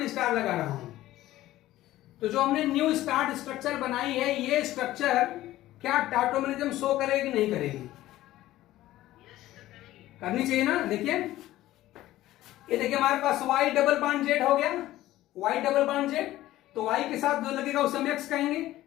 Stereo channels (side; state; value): right; quieter; 15.3 dB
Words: स्टार लगा रहा हूं, तो जो हमने न्यू स्टार्ट स्ट्रक्चर बनाई है, ये स्ट्रक्चर क्या टाटोमेरिज्म शो करेगी नहीं करेगी? करनी चाहिए ना। देखिए ये देखिए हमारे पास Y डबल बॉन्ड जेड हो गया, Y डबल बॉन्ड जेड, तो Y के साथ जो लगेगा उसे हम X कहेंगे।